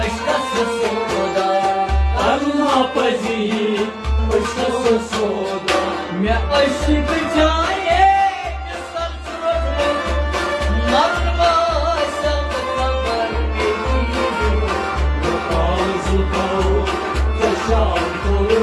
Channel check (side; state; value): both; identical; correlation 1.00